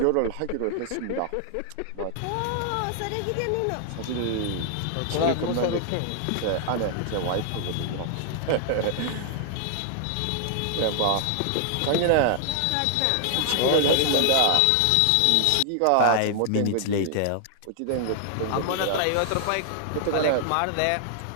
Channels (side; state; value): both; different; correlation 0.00